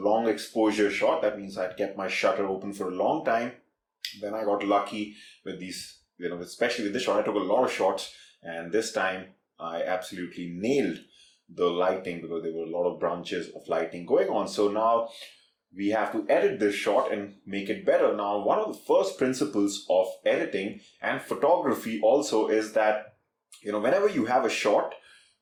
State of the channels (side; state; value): both; identical; correlation 1.00